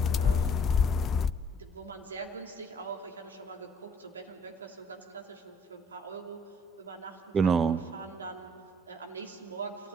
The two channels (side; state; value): both; normal; correlation 0.62